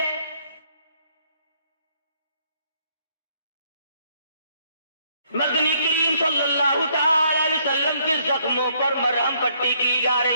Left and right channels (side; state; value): both; inverted; correlation -0.68